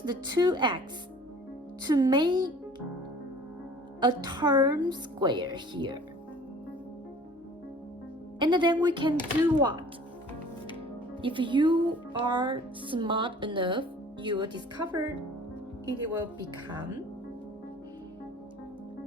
the 2x to make a term square here. And then we can do what? If you are smart enough, you will discover it will become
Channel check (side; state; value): both; normal; correlation 0.49